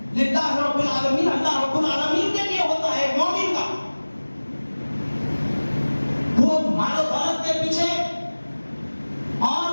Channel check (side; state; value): both; inverted; correlation -1.00